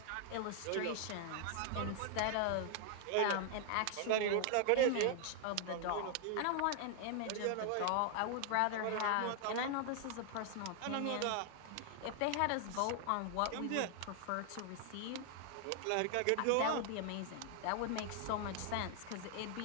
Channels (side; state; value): both; different; correlation 0.00